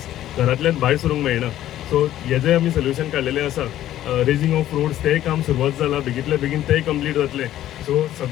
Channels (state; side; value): quieter; right; 12.9 dB